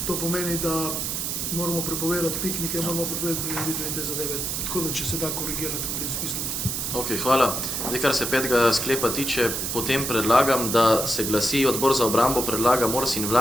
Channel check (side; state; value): right; noise; hiss, 2 dB below the sound